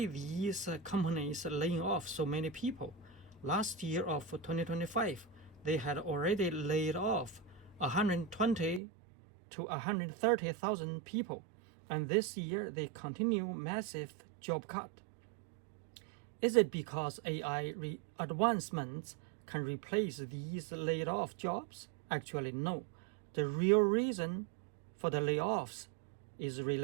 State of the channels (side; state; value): left; drops out; at 8.8 s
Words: these companies laying off so many people? Last year of 2025, they had already laid off 120 to 130,000 people, and this year they continue massive job cut. Is it because AI advancements can replace these laid off jobs? Actually, no. The real reason for the layoffs is